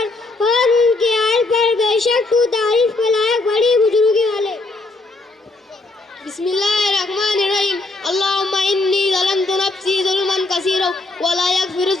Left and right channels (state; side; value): quieter; right; 3.1 dB